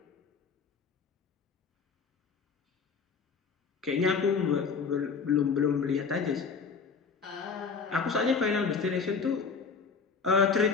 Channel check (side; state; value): right; quieter; 5.4 dB